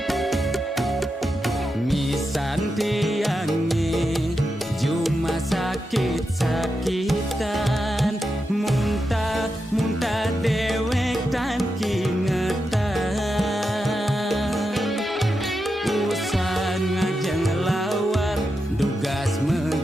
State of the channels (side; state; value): both; normal; correlation 0.87